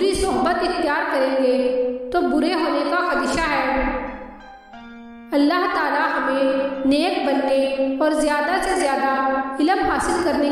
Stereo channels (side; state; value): both; identical; correlation 1.00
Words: सोहबत इख्तियार करेंगे तो बुरे होने का खदशा है। अल्लाह ताला हमें नेक बनने और ज़्यादा से ज़्यादा इल्म हासिल करने